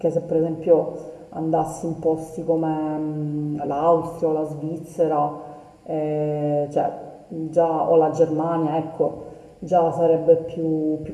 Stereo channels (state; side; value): identical; both; correlation 1.00